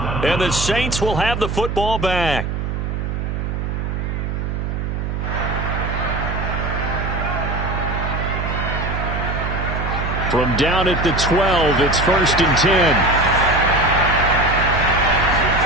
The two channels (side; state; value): right; noise; hum, 3 dB below the sound